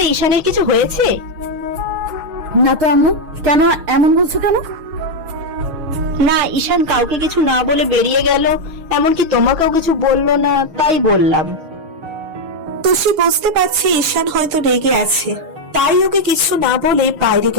ঈশানের কিছু হয়েছে? না তো আম্মু, কেন এমন বলছো কেন? না, ঈশান কাউকে কিছু না বলে বেরিয়ে গেল, এমনকি তোমাকেও কিছু বললো না, তাই বললাম। তুষি বুঝতে পারছে ঈশান হয়তো রেগে আছে, তাই ওকে কিছু না বলে বাইরে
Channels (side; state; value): left; late; 6.5 ms